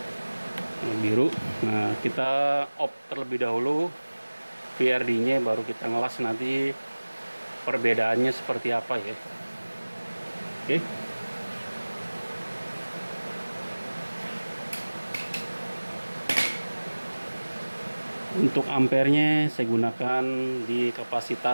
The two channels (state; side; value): inverted; both; correlation -1.00